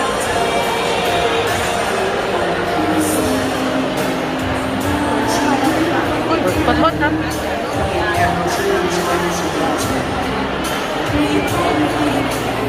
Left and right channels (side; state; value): both; identical; correlation 1.00